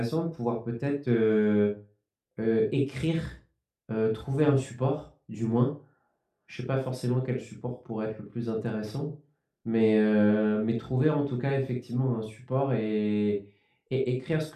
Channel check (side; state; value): both; identical; correlation 1.00